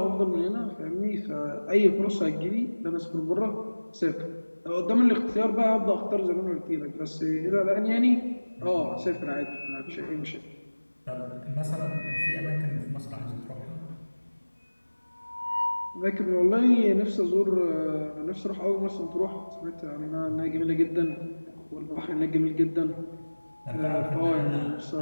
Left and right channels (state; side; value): inverted; both; correlation -1.00